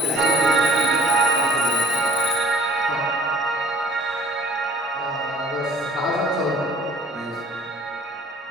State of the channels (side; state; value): both; normal; correlation 0.50